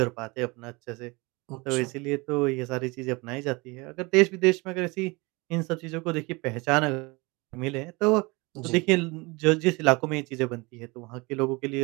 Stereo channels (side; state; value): left; quieter; 25.8 dB